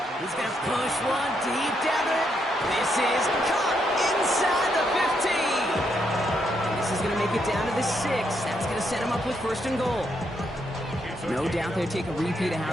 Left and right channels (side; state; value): both; normal; correlation 0.77